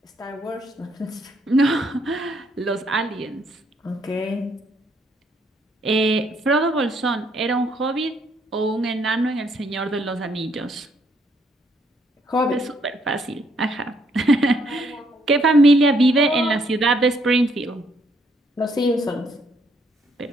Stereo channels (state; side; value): normal; both; correlation 0.70